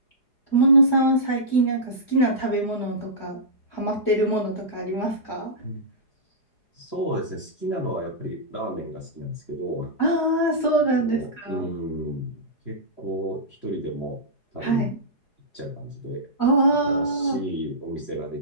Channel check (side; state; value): right; late; 4.8 ms